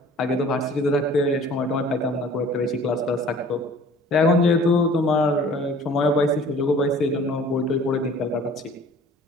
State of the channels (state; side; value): normal; both; correlation 0.49